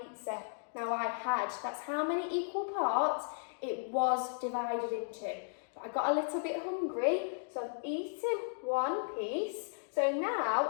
Now that's how many equal parts it was divided into. But I got a little bit hungry, so I've eaten 1 piece. So now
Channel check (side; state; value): right; silent; digital silence